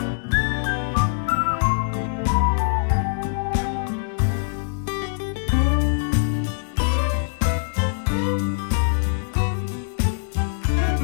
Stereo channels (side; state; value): right; silent; 63 dB below the other